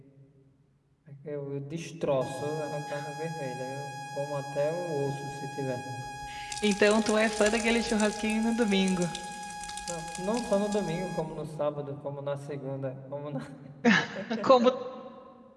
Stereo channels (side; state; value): both; identical; correlation 1.00